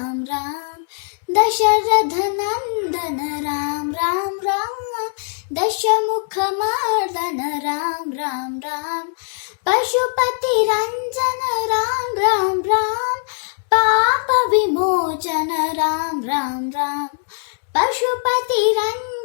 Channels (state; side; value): silent; right; digital silence